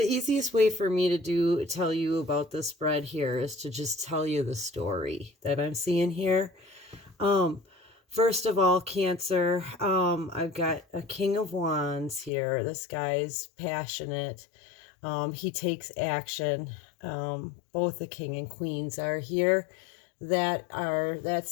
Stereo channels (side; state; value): right; drops out; at 12.3 s